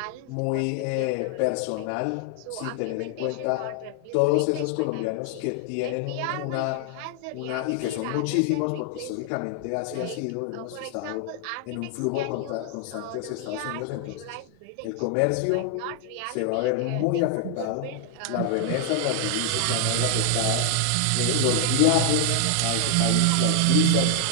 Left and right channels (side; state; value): both; different; correlation 0.00